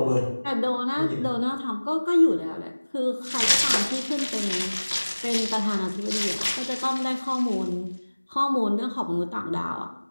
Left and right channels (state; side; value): inverted; both; correlation -1.00